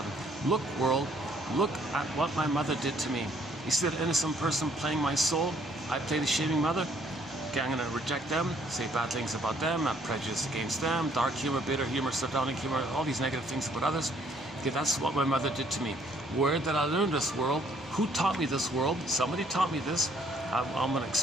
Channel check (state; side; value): normal; both; correlation 0.64